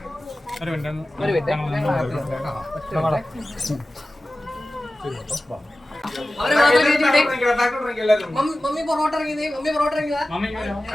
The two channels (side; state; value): both; normal; correlation 0.95